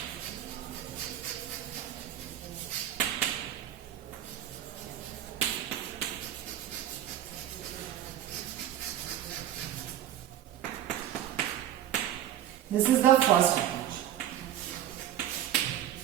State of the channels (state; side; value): quieter; left; 11.7 dB